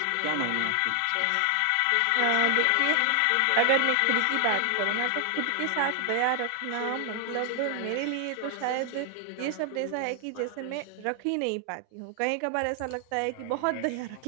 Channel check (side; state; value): both; different; correlation 0.00